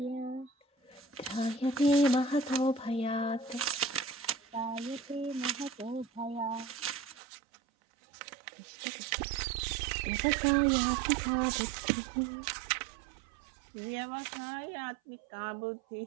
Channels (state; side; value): drops out; left; at 7.2 s